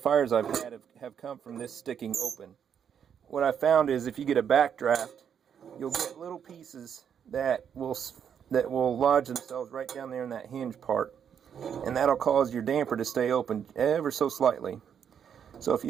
I've had have come from this sticking open. What I found is if you get a backdraft, you'll get little pieces that will lodge themselves right down there in that hinge part, and that'll cause your damper to stay open ever so slightly. So if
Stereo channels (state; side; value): quieter; left; 8.1 dB